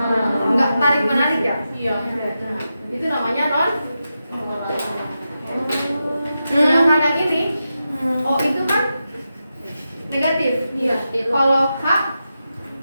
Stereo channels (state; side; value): inverted; both; correlation -0.89